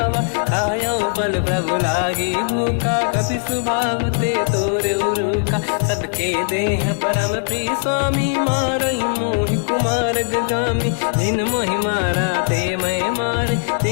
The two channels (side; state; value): right; silent; digital silence